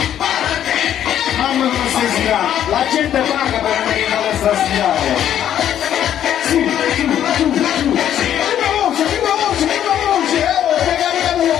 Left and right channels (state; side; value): quieter; right; 10.5 dB